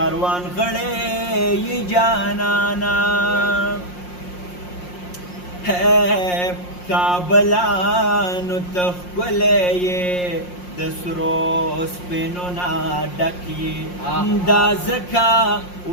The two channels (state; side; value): late; right; 5.6 ms